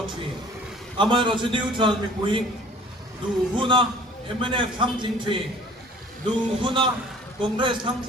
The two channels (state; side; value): normal; both; correlation 0.50